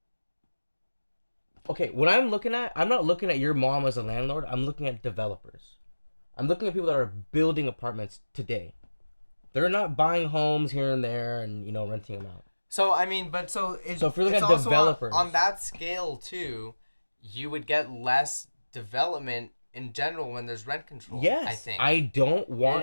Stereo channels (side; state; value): both; inverted; correlation -1.00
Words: Okay, what I'm looking at, I'm not looking at your mom as a landlord. I'm looking at developers. I'm looking at people that are building apartments today. They're not buying homes here and there and, renting them out. So, I mean, but so if you're looking it's at also developers. on that scale, too, you would get less development in general when there's rent control. Yes. I think. I don't